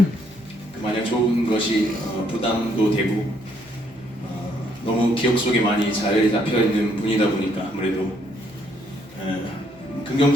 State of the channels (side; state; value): right; noise; hum, 28 dB below the sound